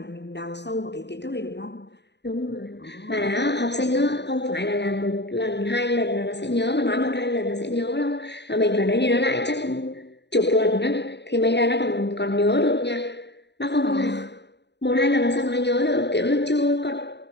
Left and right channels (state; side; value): late; right; 0.50 ms